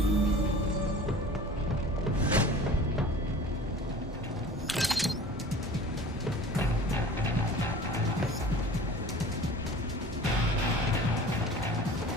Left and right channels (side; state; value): both; normal; correlation 0.42